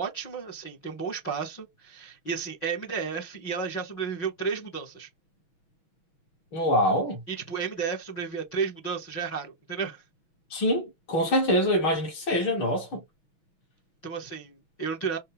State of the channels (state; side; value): late; right; 6.2 ms